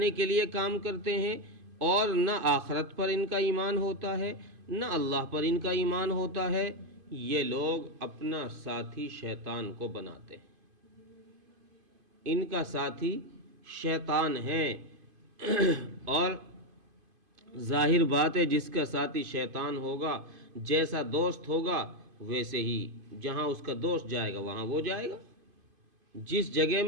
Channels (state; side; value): late; left; 2.5 ms